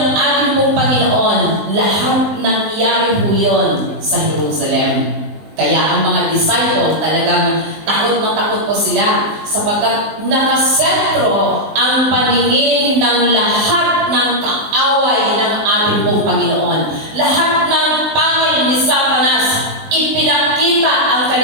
ating pong Panginoon, lahat nangyari po yun sa Jerusalem. Kaya ang mga disciple talagang takot na takot po sila sapagkat nakasentro ang paningin ng lahat ng kaaway ng ating pong Panginoon. Lahat ng pangil ni Satanas, ipinakita ang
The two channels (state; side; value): late; left; 19 ms